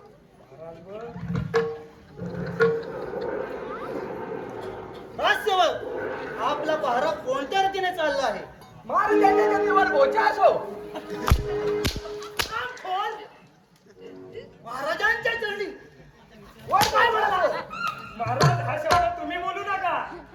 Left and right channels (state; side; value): identical; both; correlation 1.00